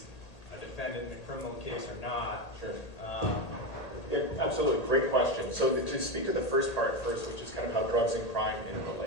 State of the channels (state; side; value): late; right; 1.8 ms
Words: a defendant in a criminal case or not? Sure. Yeah, absolutely, great question. So to speak to the first part first, which is kind of how drugs and crime